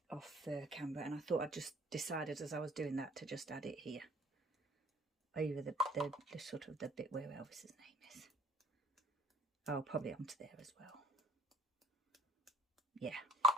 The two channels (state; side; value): normal; both; correlation 0.52